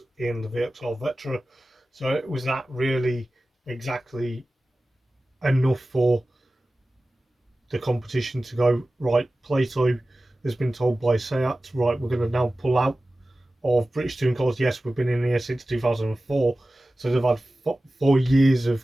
in the VXR Vetra. So it was that really exactly enough for the competition to go, right, Plato has been told by Seat, right, we're going to now pull out of British Touring Cars. Yes, we've been in here since 2004, so they've had 4 years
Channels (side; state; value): both; normal; correlation 0.96